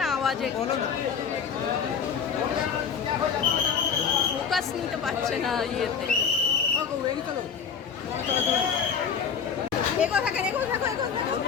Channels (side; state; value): right; quieter; 6.7 dB